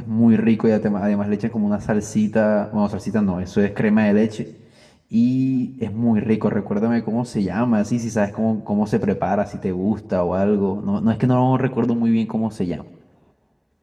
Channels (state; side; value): identical; both; correlation 1.00